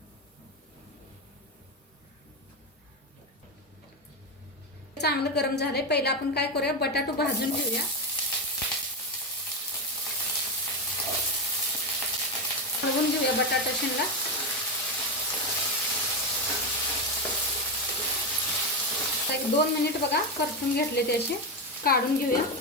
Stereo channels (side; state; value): both; normal; correlation 0.12